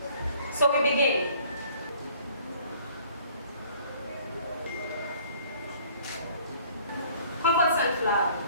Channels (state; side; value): inverted; both; correlation -0.55